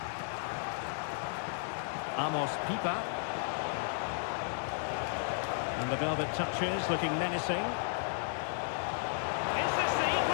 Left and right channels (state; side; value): silent; right; 55 dB below the other